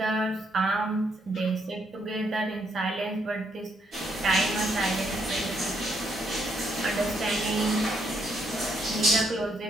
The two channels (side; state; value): both; normal; correlation 0.75